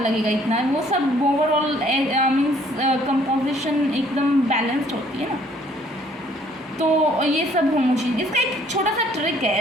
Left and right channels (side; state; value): both; normal; correlation 0.61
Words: इतना, वो सब ओवरऑल मीन्स कंपोजिशन एकदम बैलेंस्ड होती है ना। तो ये सब होमोजीनियस। इसका एक छोटा सा ट्रिक